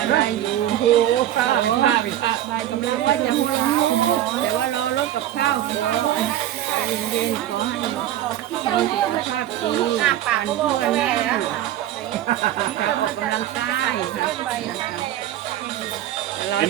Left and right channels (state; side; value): quieter; left; 12.5 dB